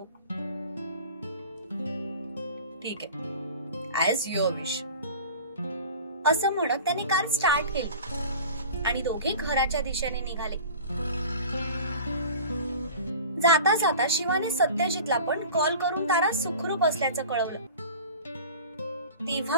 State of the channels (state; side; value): inverted; both; correlation -0.39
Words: ठीक आहे, ऍज युअर विश. असं म्हणत त्याने कार स्टार्ट केली आणि दोघे घराच्या दिशेने निघाले. जाता जाता शिवाने सत्यजितला पण कॉल करून तारा सुखरूप असल्याचं कळवलं.